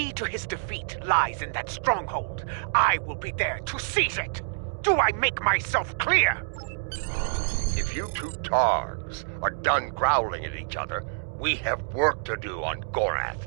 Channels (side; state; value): left; silent; digital silence